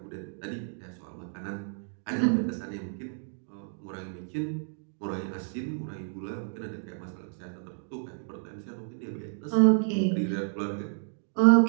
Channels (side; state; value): left; silent; digital silence